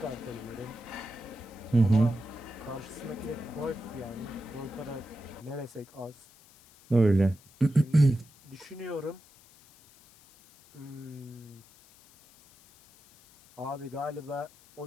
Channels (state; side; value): noise; left; hiss, 26 dB below the sound